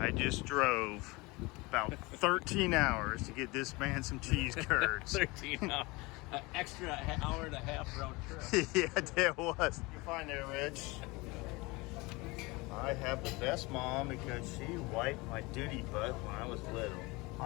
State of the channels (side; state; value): right; quieter; 24.2 dB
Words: just drove about 13 hours to get this man some cheese curds. 13 hours. Extra hour and a half round trip. Yeah, there was. You find there, Rich? I have the best mom because she wiped my duty butt when I was little.